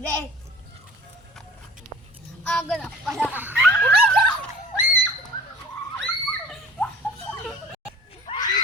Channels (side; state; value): both; normal; correlation 0.43